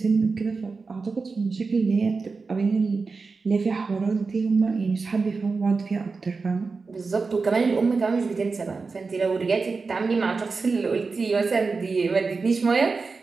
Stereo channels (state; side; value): quieter; left; 4.4 dB